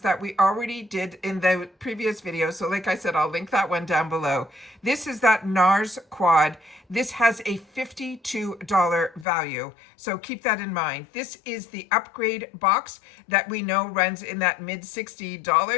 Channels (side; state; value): right; drops out; at 9.2 s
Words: that we already did in the previous video. So like I said, I'll link that one down below. This is that NARS quad. This has a $52 value, so keep that in mind. This is the upgrade box that we know runs in that mid